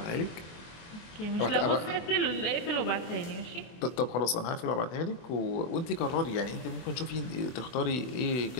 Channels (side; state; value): right; late; 24 ms